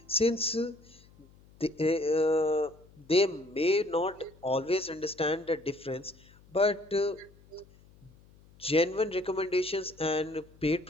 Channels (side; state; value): left; noise; hum, 26 dB below the sound